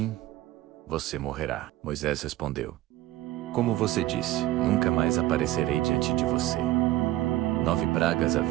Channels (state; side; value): quieter; left; 15.9 dB